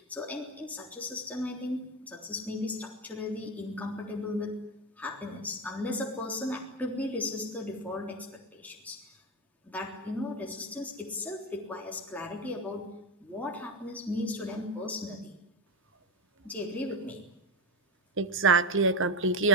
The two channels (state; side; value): normal; both; correlation 0.15